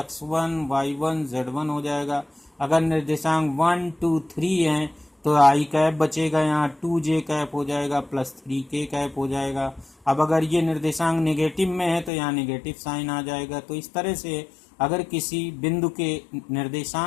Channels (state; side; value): drops out; right; at 12.1 s